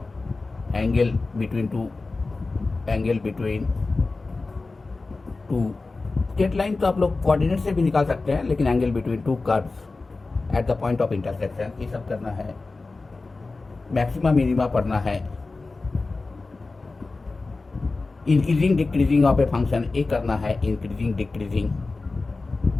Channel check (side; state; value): right; quieter; 3.6 dB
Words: angle between two straight line तो आप लोग कोऑर्डिनेट से भी निकाल सकते हैं, लेकिन angle between two curves at the point of intersection, ये सब करना है। मैक्सिमा मिनिमा पढ़ना है। Increasing decreasing of a function, ये करना है। Increasing decreasing